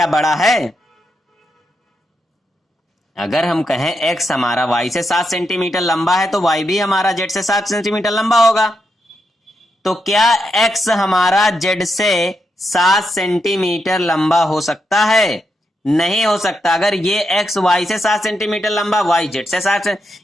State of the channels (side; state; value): both; normal; correlation 0.83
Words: बड़ा है? अगर हम कहें x हमारा y से 7 सेंटीमीटर लंबा है तो y भी हमारा z से 7 सेंटीमीटर लंबा होगा। तो क्या x हमारा z से 7 सेंटीमीटर लंबा हो सकता है? नहीं हो सकता। अगर ये x y से 7 सेंटीमीटर लंबा, y z से 7,